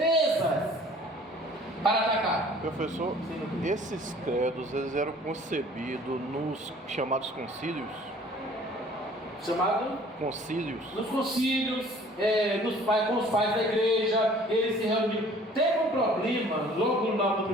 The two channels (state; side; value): normal; both; correlation 0.52